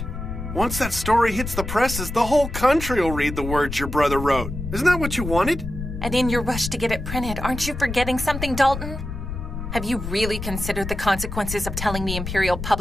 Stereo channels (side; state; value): left; noise; rumble, 7 dB below the sound